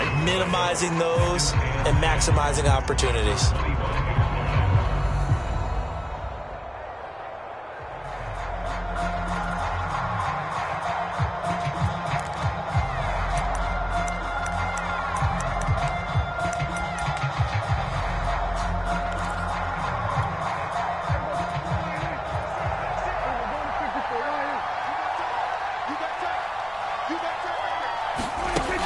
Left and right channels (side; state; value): both; identical; correlation 1.00